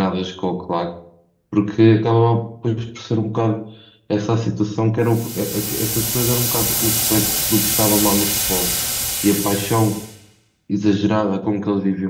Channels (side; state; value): both; identical; correlation 1.00